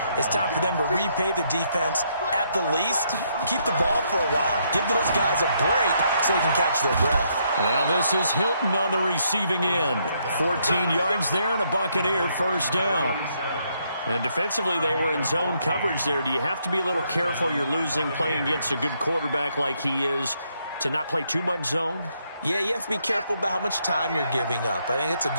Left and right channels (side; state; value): both; inverted; correlation -0.74